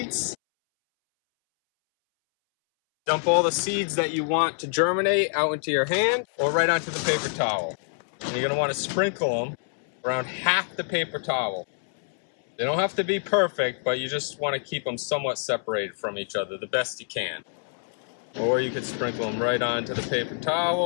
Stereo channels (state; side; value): silent; right; 61 dB below the other